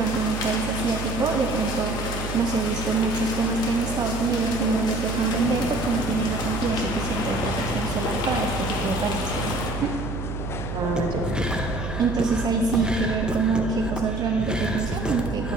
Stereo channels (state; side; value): noise; right; hum, 6 dB below the sound